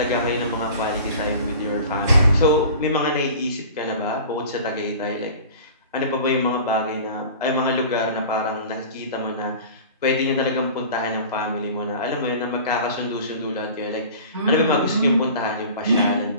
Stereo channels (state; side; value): inverted; both; correlation -0.40